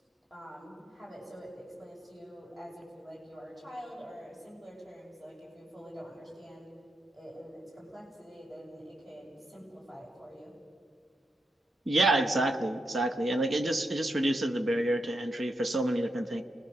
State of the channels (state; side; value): normal; both; correlation 0.84